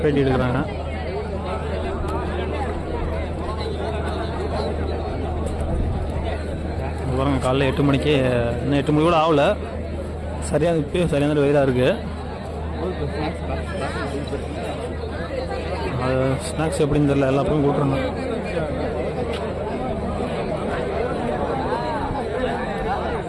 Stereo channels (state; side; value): identical; both; correlation 1.00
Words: எடுக்கிறாங்க. பாருங்க, காலைல 8 மணிக்கு, இன்னும் 8 மணி கூட ஆகலை. சரியாக இப்போயும் சரியான வெயிலாக இருக்குது. அது ஸ்நாக்ஸ் எப்படின்னு தெரியல, எல்லா பக்கம் கூட்டுறாங்க.